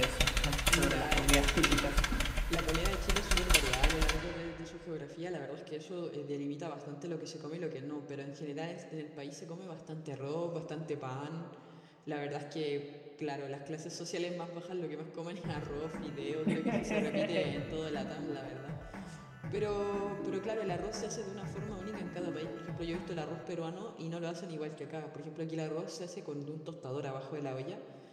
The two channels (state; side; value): identical; both; correlation 1.00